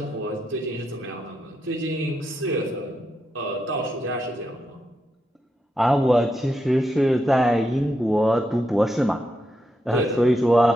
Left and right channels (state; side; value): normal; both; correlation 0.84